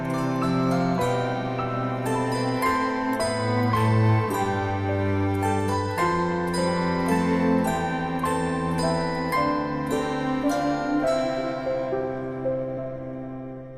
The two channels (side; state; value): both; identical; correlation 1.00